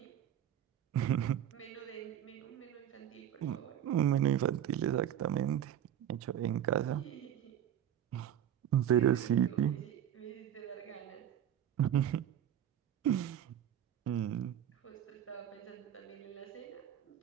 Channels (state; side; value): quieter; left; 10.3 dB